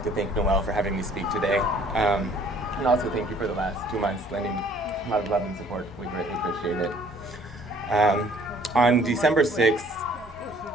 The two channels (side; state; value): both; normal; correlation 0.57